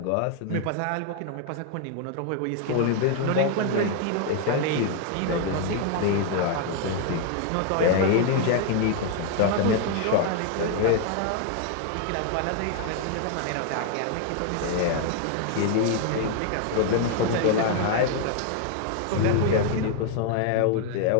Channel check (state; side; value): different; both; correlation 0.00